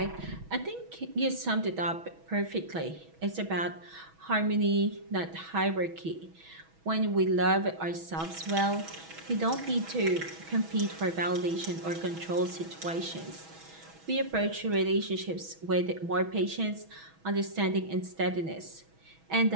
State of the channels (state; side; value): late; left; 6.2 ms